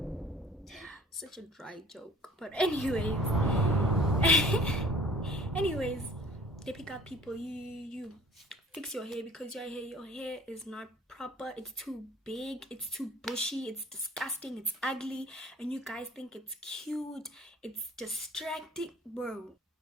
Such a dry joke. But anyways, they pick up people. You fix your hair, because your hair is not proper. It's too big, it's too bushy, it's disgusting, it's ugly, and you guys think it's cute, it's distracting. Bro,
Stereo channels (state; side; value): normal; both; correlation 0.50